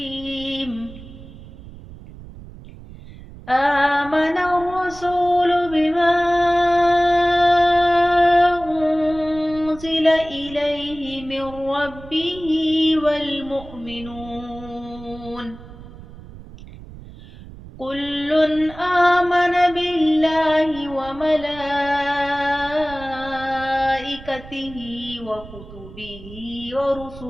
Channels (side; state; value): right; noise; rumble, 17 dB below the sound